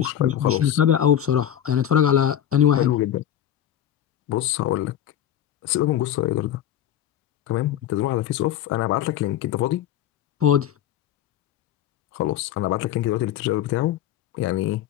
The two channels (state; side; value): quieter; right; 11.0 dB